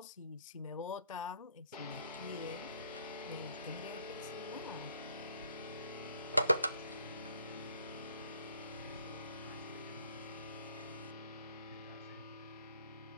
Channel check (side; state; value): both; inverted; correlation -0.66